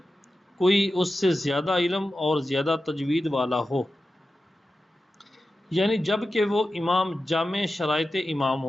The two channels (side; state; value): both; normal; correlation 0.93